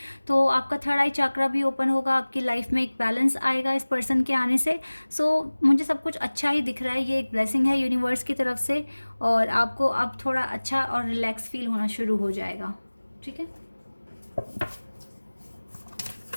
तो आपका थर्ड आई चक्रा भी ओपन होगा, आपकी लाइफ में एक बैलेंस आएगा इस पर्सन के आने से। सो मुझे सब कुछ अच्छा ही दिख रहा है, ये एक ब्लेसिंग है यूनिवर्स की तरफ से, और आपको अब थोड़ा अच्छा और रिलैक्स फील होना शुरू हो जाएगा, ठीक है।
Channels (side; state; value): both; inverted; correlation -1.00